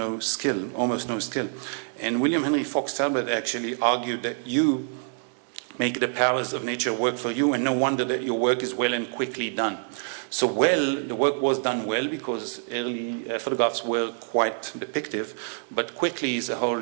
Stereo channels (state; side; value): silent; left; 61 dB below the other